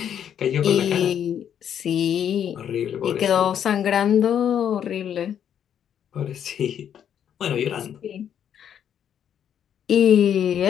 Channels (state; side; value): quieter; right; 9.2 dB